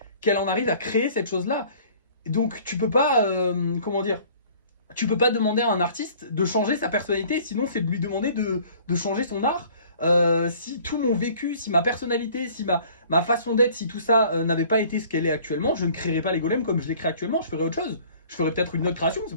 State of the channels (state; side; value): inverted; both; correlation -0.52